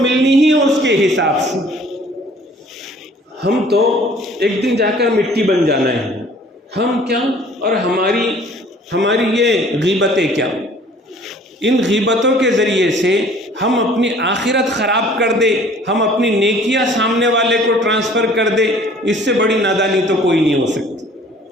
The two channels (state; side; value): normal; both; correlation 0.53